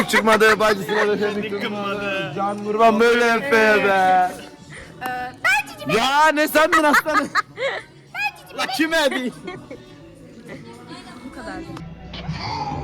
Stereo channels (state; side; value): identical; both; correlation 1.00